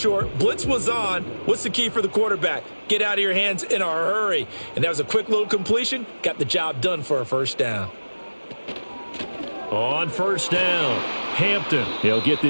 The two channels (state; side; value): inverted; both; correlation -1.00